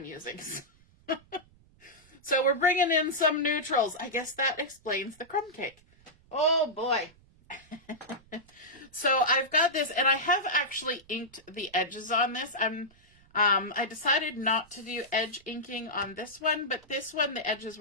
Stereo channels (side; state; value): right; noise; rumble, 29 dB below the sound